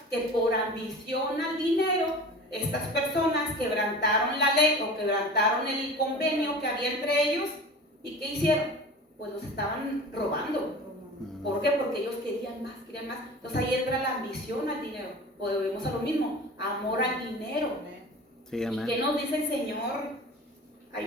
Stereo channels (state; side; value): normal; both; correlation 0.37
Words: Que por ambición al dinero, estas personas quebrantaron la ley o quebrantaron el convenio que había entre ellos. ¿Y qué hicieron? Pues los estaban robando. ¿Por qué? Porque ellos querían más, querían más. Entonces ahí entra la ambición al dinero. Volvemos a lo mismo, amor al dinero. Sí, amén. ¿Y qué nos dice el Señor? Hay